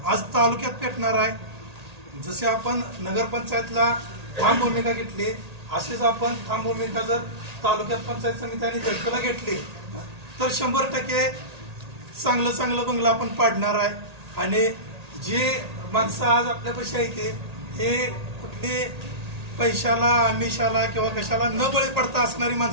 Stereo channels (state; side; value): late; left; 1.8 ms